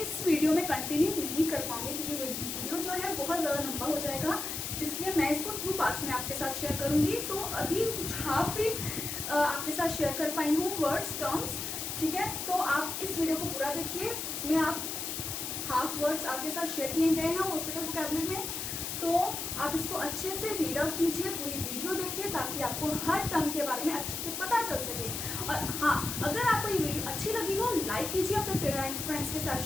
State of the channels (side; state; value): left; noise; hiss, 4 dB below the sound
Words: वीडियो में कंटिन्यू नहीं कर पाऊंगी क्योंकि वीडियो जो है बहुत ज़्यादा लंबा हो जाएगा, इसलिए मैं इसको 2 पार्ट्स में आपके साथ शेयर करूंगी। तो अभी कुछ हाफ ही आपके साथ शेयर कर पाई हूँ वर्ड्स टर्म्स, ठीक है। तो आप इस वीडियो को पूरा देखिए, इसमें आप हाफ वर्ड्स आपके साथ शेयर किए गए हैं हॉस्पिटल वोकैबुलरी में, तो आप इसको अच्छे से रीड आउट कीजिए, पूरी वीडियो देखिए ताकि आपको हर टर्म के बारे में अच्छे से पता चल सके। और हाँ, अगर आपको ये वीडियो अच्छी लगी हो लाइक कीजिए, अपने फ्रेंड्स के साथ